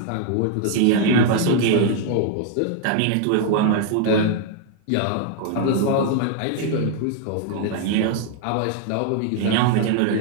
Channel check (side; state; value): both; different; correlation 0.00